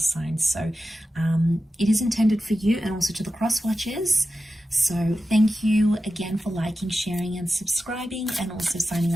So it is intended for you and also to the cross watchers. So thank you again for liking, sharing and subscribing, and also signing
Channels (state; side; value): normal; both; correlation 0.92